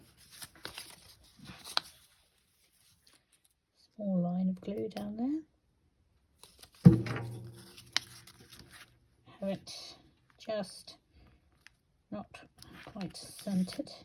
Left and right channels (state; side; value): identical; both; correlation 1.00